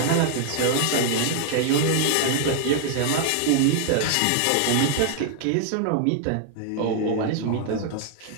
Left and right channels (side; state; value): both; different; correlation 0.00